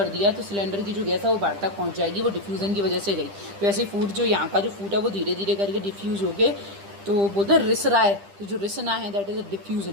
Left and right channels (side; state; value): left; late; 10 ms